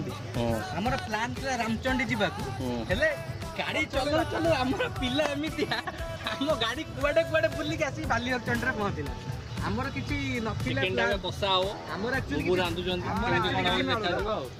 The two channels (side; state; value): both; identical; correlation 1.00